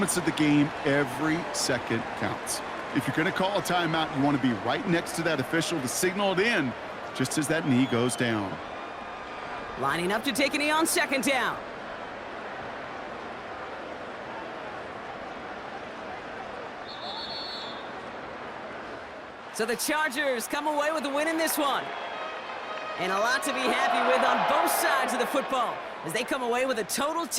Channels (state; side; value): identical; both; correlation 1.00